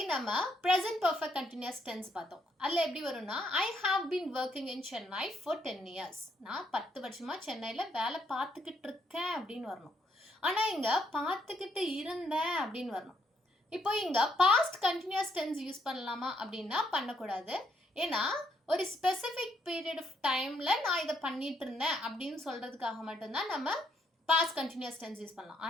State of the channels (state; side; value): normal; both; correlation 0.73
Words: நம்ம present perfect continuous tense பார்த்தோம். அதில் எப்படி வரும்னா I have been working in Chennai for 10 years. நான் 10 வருஷமா சென்னையில் வேலை பார்த்துக்கிட்டு இருக்கேன் அப்படின்னு வரணும். ஆனால் இங்கே பார்த்துக்கிட்டு இருந்தேன் அப்படின்னு வரணும். இப்போ இங்கே பாஸ்ட் கண்டினியூஸ் டென்ஸ் யூஸ் பண்ணலாமா அப்படின்னா பண்ணக்கூடாது. ஏன்னா ஒரு ஸ்பெசிஃபிக் பீரியட் ஆஃப் டைமில் நான் இதை பண்ணிட்டு இருந்தேன் அப்படின்னு சொல்கிறதுக்காக மட்டும்தான் நம்ம பாஸ்ட் கண்டினியூஸ் டென்ஸ் யூஸ் பண்ணலாம்.